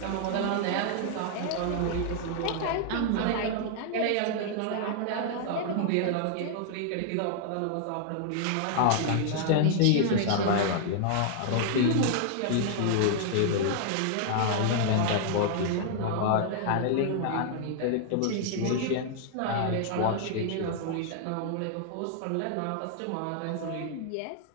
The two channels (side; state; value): both; different; correlation -0.01